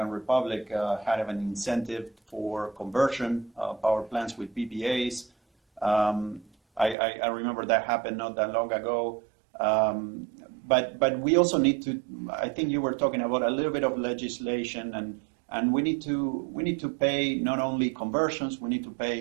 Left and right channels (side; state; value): left; drops out; at 7.0 s